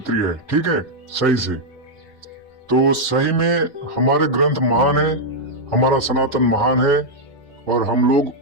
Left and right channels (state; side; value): normal; both; correlation -0.03